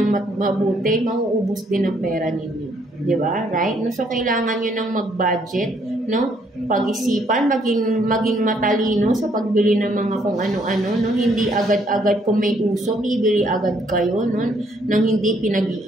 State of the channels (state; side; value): normal; both; correlation 0.68